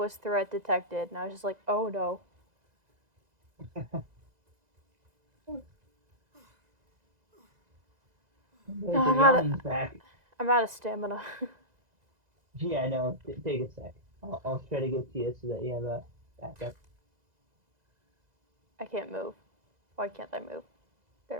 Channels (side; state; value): left; late; 2.0 ms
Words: threat detected, and I was just like, oh no. The, No, the yawning's back. I'm out of stamina. Yeah, I know. Take a sec. I'll try to get to you so that you have a backup. I can't move. Why can't I move? There